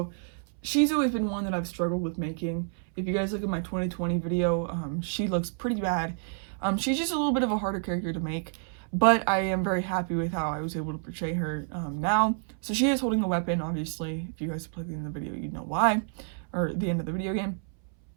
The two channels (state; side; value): silent; left; 59 dB below the other